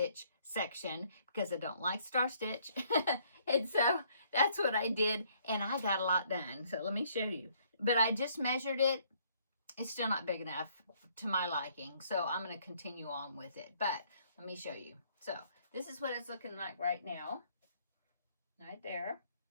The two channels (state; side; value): inverted; both; correlation -0.65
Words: section because I don't like star stitch. And so that's what I did, and I got a lot done. So let me show you. But I just measured it. It's still not big enough to my liking, so I'm going to continue on with it. But let me show you. So this is what it's looking like right now. Right there.